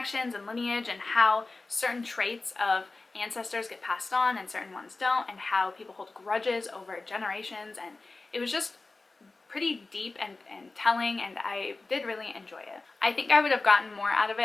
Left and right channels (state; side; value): quieter; right; 3.5 dB